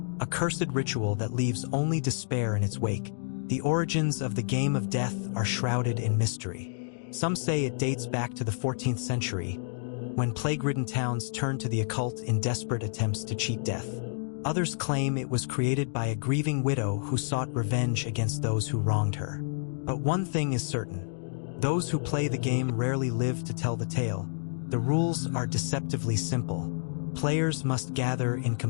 A cursed ritual that leaves only despair in its wake. The origins of the Game of Death are shrouded in mystery. Some say it dates back to the 14th century, when plague-ridden towns turned to the occult in desperate attempts to cheat death. Others claim it was created by a grieving widow who sought revenge against those who wronged her. But one thing is certain. Those who play the game rarely live to tell the tale. The rules are deceptively simple. Players must gather in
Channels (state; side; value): silent; right; digital silence